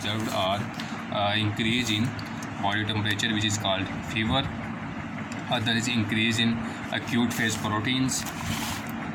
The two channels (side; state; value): both; identical; correlation 1.00